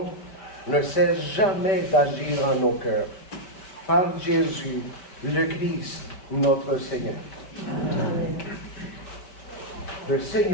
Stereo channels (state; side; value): late; right; 5.1 ms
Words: ne cesse jamais d'agir en nos cœurs. Par Jésus, le Christ, notre Seigneur. Amen. Le